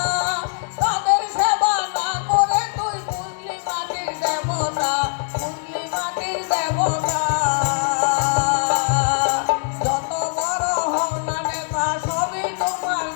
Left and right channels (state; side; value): silent; right; 58 dB below the other